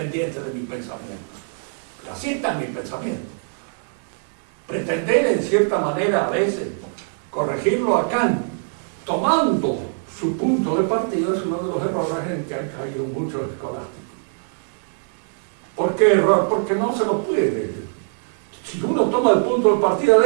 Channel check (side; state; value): left; silent; digital silence